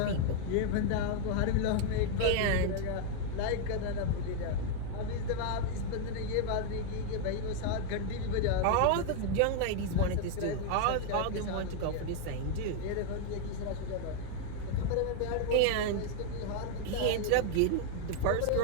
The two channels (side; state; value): both; different; correlation 0.00